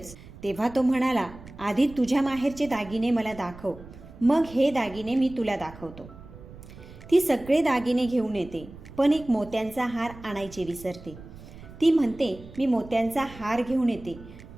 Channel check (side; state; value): right; noise; rumble, 17 dB below the sound